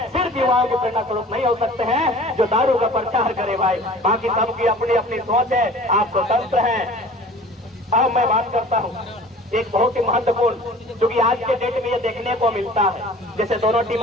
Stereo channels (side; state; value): both; normal; correlation 0.45